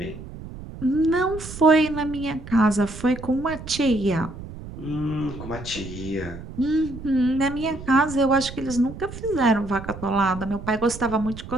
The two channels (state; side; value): noise; right; rumble, 12 dB below the sound